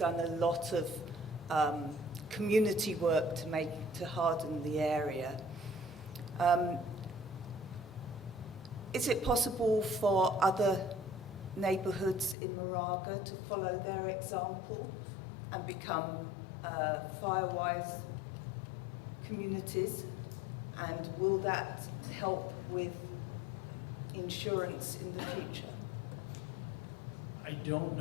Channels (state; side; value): drops out; right; at 12.4 s